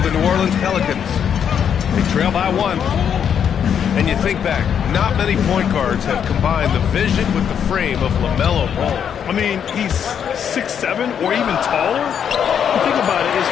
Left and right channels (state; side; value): quieter; right; 8.2 dB